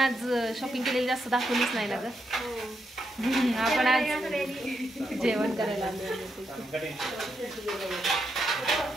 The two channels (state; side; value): normal; both; correlation 0.82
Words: शॉपिंग केलेली जास्त दाखवलीच नाही ना ग. आपण आज जेवण करायला